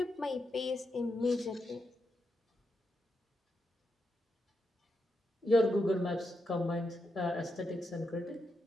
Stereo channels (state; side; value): normal; both; correlation 0.84